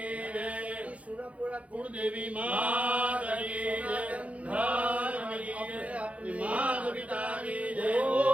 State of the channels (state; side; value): late; left; 0.065 ms